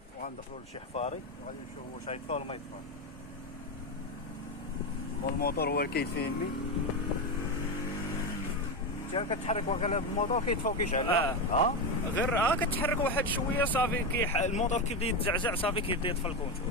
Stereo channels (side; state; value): both; normal; correlation 0.13